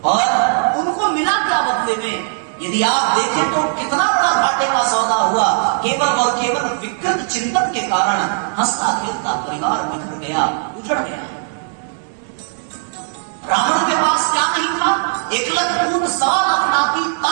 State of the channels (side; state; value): left; silent; 67 dB below the other